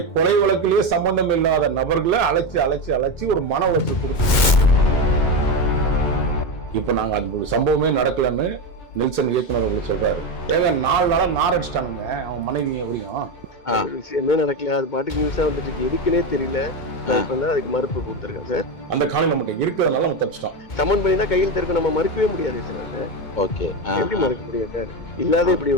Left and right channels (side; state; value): right; late; 2.2 ms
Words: கொலை வழக்கிலே சம்பந்தம் இல்லாத நபர்களை அழைச்சி ஒரு மன உளைச்சல் கொடுத்தாங்க. இப்ப நாங்க அந்த சம்பவமே நடக்கலன்னு நெல்சன் இயக்குனர் அவர்கள் சொல்றாரு. ஏங்க 4 நாளா நார் அடிச்சிட்டானுங்க அவன் மனைவி எப்படியும் விஷயமே நடக்கல, அது பாட்டுக்கு நியூஸா வந்துட்டு இருக்கு, எதுக்குன்னே தெரியல. அதுக்கு மறுப்பு கொடுத்துருக்கேன் சார். அந்த காலம் நம்மகிட்ட இருக்கிறதுனால நம்ம தப்பிச்சிட்டோம். சமன் பண்ணினா கையில் இருக்க நம்ம மறுக்கவே முடியாது சார். ஓகே, எப்படி மறுக்க முடியும் சார்? இல்லாத இப்படி